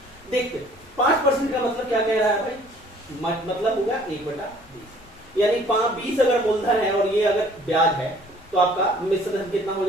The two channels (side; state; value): left; noise; rumble, 28 dB below the sound